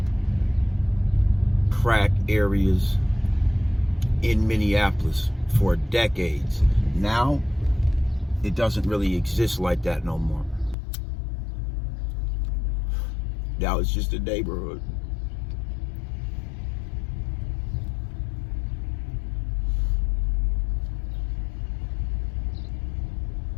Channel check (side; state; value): right; drops out; at 10.8 s